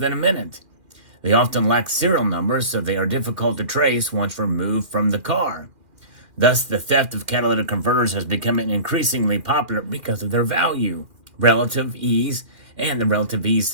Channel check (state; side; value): late; left; 2.6 ms